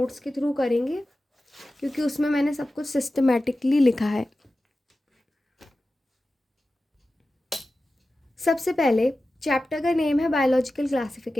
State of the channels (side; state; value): both; normal; correlation 0.94